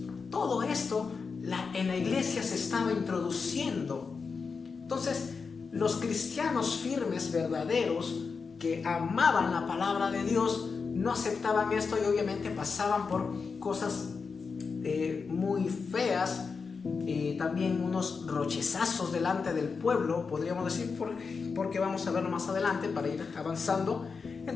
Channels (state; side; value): quieter; right; 5.1 dB